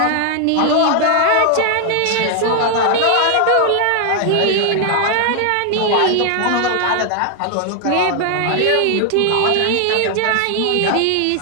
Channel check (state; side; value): different; both; correlation 0.01